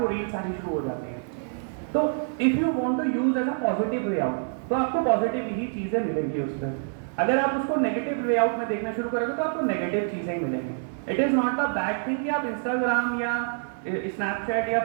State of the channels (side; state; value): left; silent; digital silence